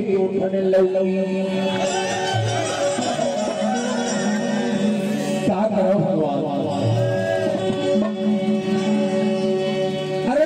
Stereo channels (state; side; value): identical; both; correlation 1.00